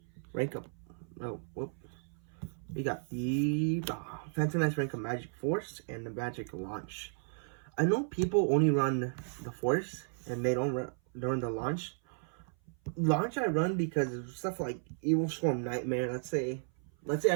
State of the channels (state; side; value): silent; left; 55 dB below the other